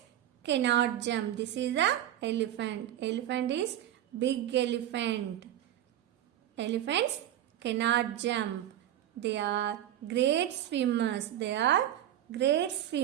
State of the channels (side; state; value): left; quieter; 12.1 dB